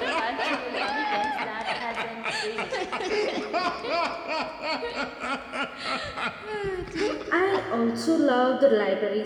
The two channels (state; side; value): identical; both; correlation 1.00